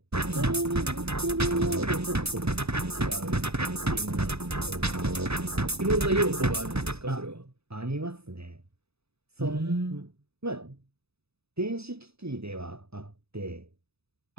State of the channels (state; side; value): late; left; 0.79 ms